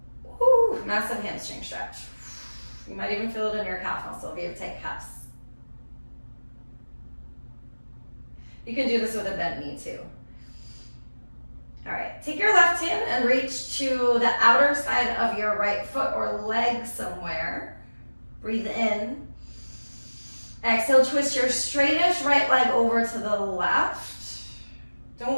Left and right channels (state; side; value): inverted; both; correlation -1.00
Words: Woo, massive hamstring stretch. You might even feel it in your calf muscle if you have tight calves. You can do this with a bent knee too. All right, take your left hand and reach to the outer side of your right foot or leg somewhere. Breathe in. Exhale, twist your straightest right leg over to the left.